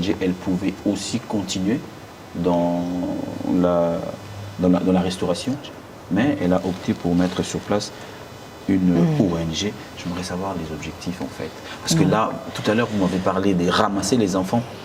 elle pouvait aussi continuer dans la restauration, mais elle a opté pour mettre sur place une ONG. J'aimerais savoir les objectifs en fait. Parce que là, tout à l'heure, vous m'avez parlé de ramasser les enfants.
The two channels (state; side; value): identical; both; correlation 1.00